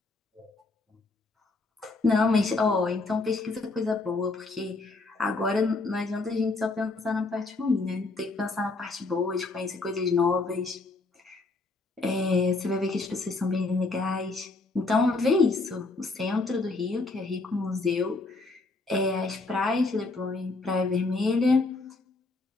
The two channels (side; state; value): right; quieter; 3.5 dB